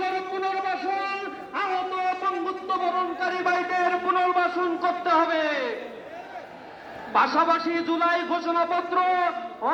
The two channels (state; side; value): identical; both; correlation 1.00